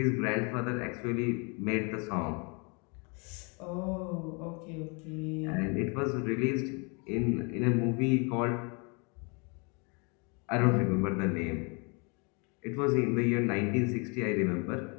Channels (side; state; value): right; quieter; 33.2 dB